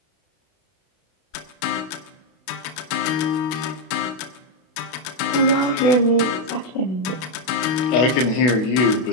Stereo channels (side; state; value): right; late; 32 ms